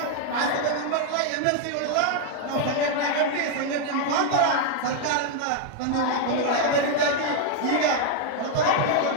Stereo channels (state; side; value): different; both; correlation 0.00